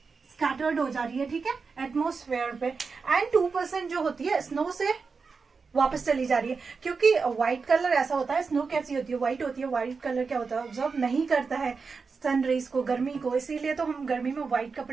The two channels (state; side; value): quieter; left; 4.9 dB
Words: स्कैटर्ड हो जा रही है, ठीक है, एटमोस्फेयर पे। एंड 2% जो होती है स्नो से वापस चली जा रही है, क्योंकि व्हाइट कलर ऐसा होता है, स्नो कैसी होती है, व्हाइट होती है। व्हाइट कलर क्या होता है, ऑब्जर्व नहीं करता है सन रेज को, गर्मी को, इसीलिए तो हम गर्मी में व्हाइट